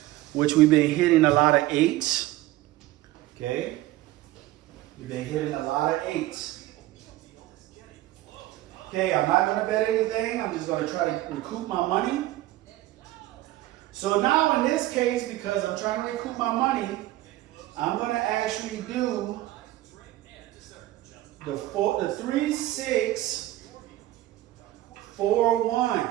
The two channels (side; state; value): left; quieter; 16.2 dB